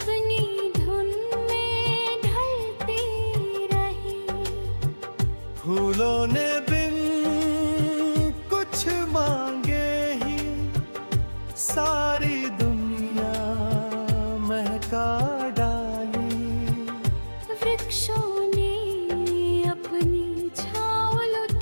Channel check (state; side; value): inverted; both; correlation -1.00